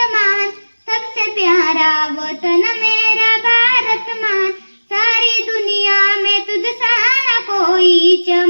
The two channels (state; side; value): inverted; both; correlation -1.00